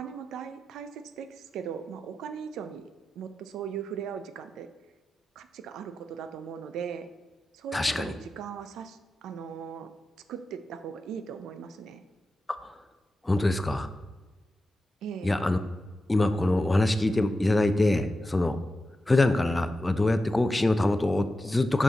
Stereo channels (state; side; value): normal; both; correlation 0.92